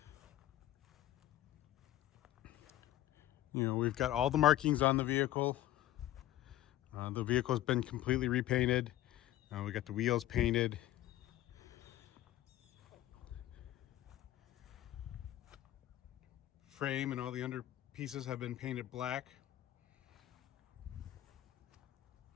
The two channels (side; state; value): right; quieter; 14.1 dB